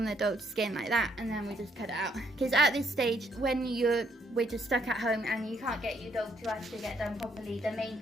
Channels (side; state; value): both; normal; correlation 0.71